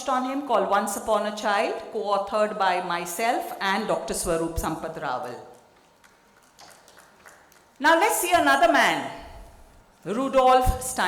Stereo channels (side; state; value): both; identical; correlation 1.00